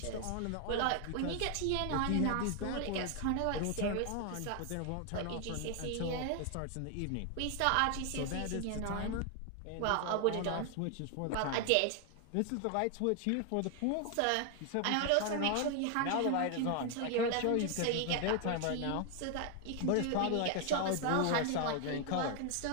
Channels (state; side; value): different; both; correlation 0.00